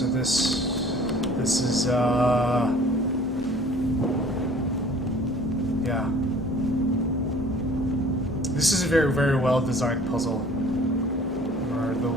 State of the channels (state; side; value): normal; both; correlation 0.51